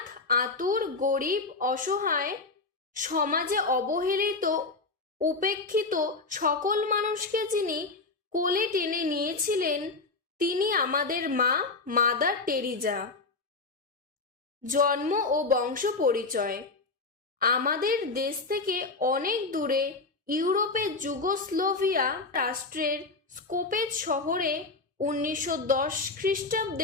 আতুর, গরিব, অসহায়, সমাজে অবহেলিত, উপেক্ষিত সকল মানুষকে যিনি কোলে টেনে নিয়েছিলেন তিনি আমাদের মা মাদার টেরেসা। জন্ম ও বংশ পরিচয়: আমাদের দেশ থেকে অনেক দূরে ইউরোপের যুগোস্লোভিয়া রাষ্ট্রের স্কোপেজ শহরে 1910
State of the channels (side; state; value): right; quieter; 3.7 dB